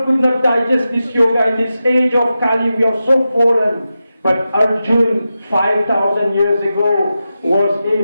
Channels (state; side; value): inverted; both; correlation -0.91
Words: could not digest this yoga. In this age of Kali, we are so fallen. But Arjuna, 5,000 years ago, was